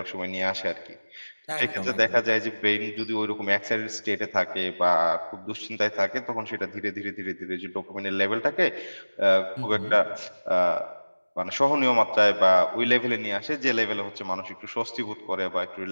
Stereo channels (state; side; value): inverted; both; correlation -1.00